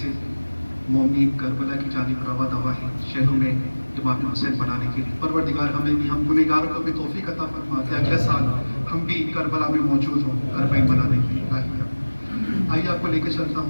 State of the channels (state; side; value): inverted; both; correlation -1.00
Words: مومنین کربلا کی جانب رواں دوا ہے شہروں میں امام حسین بنانے کے لیے۔ پروردگار ہمیں بھی، ہم گنہگاروں کو بھی توفیق عطا فرما کہ اگلے سال ہم بھی کربلا میں موجود ہوں اربعین بنانے کے لیے۔ آئیے آپ کو لے کے چلتا